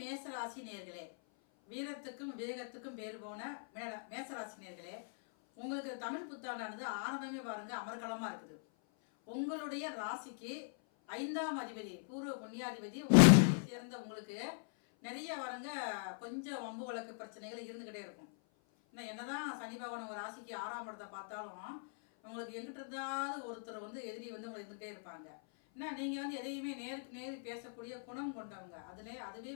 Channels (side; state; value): right; silent; 51 dB below the other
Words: மேசராசி நேர்களே, வீரத்துக்கும் விவேகத்துக்கும் பேர் போன மேசராசி நேர்களே, உங்களுக்கு தமிழ் புத்தாண்டானது ஆரம்பமே பாருங்க அமர்கலமா இருக்குது. உங்களுடைய ராசிக்கு 5ஆம் அதிபதி பூர்வ புண்ணியாதிபதி உங்களை சேர்ந்த உங்களுக்கு நிறைய பாருங்க கொஞ்சம் வம்பு வழக்கு பிரச்சனைகள் இருந்துக்கிட்டே இருக்கும். இன்னும் என்னதான் சனி பகவான் உங்கள் ராசிக்கு 6ஆம் இடத்தை பார்த்தாலும் உங்களுக்கு எங்கிட்ட இருந்தாவது ஒருத்தர் எதிரி உங்களை இருந்துக்கிட்டே இருப்பாங்க. ஏன்னா நீங்கள் எதையுமே நேருக்கு நேரு பேசக்கூடிய குணம் கொண்டவங்க. அதுவே